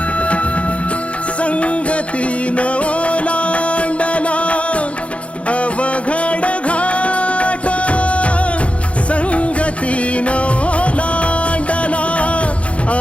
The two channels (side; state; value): right; late; 0.062 ms